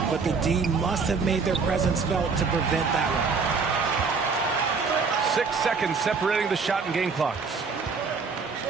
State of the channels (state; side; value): quieter; left; 4.9 dB